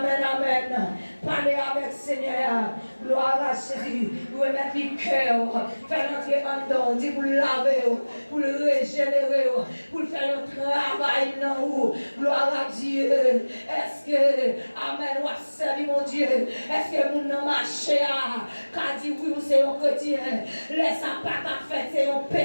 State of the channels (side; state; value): both; inverted; correlation -1.00